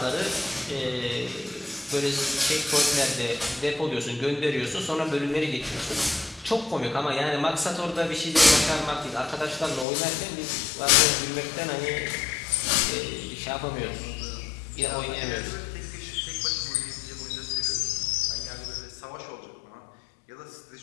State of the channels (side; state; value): right; drops out; at 9.9 s